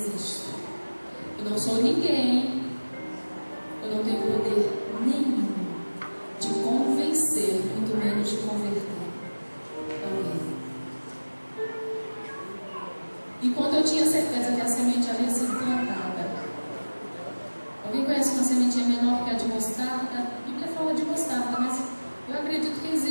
Eu não sou ninguém, eu não tenho poder nenhum de convencer, muito menos de converter alguém. E quando eu tinha certeza que a semente havia sido plantada, alguém conhece uma sementinha menor que a de mostarda? A Bíblia fala de mostarda, mas eu acredito que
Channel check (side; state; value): both; inverted; correlation -1.00